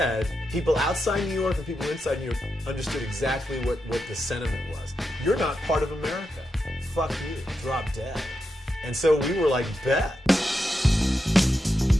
people outside New York and people inside New York understood exactly what the sentiment was. You're not part of America. Fuck you, drop dead. And so we were like, bet.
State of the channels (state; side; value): normal; both; correlation 0.86